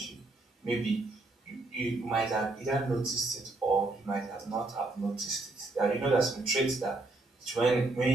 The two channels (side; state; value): left; quieter; 3.1 dB